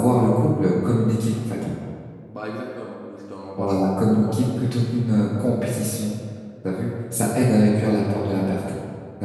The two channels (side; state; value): both; identical; correlation 1.00